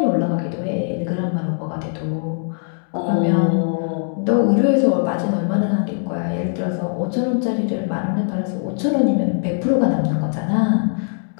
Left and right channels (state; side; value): silent; right; 65 dB below the other